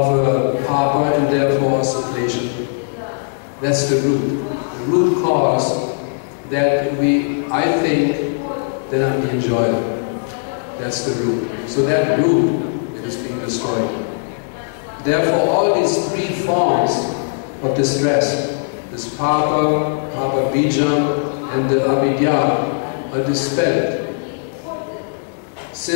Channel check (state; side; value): silent; right; digital silence